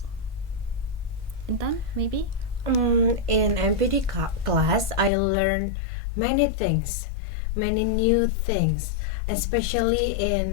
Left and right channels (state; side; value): drops out; right; at 5.1 s